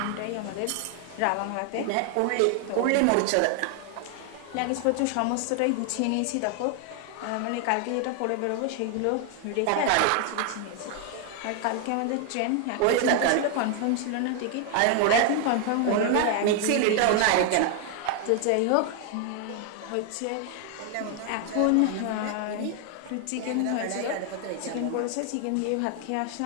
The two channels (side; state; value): both; different; correlation 0.00